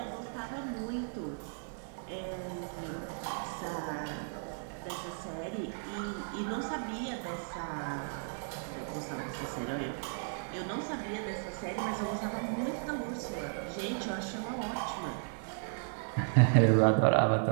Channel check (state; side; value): silent; left; 55 dB below the other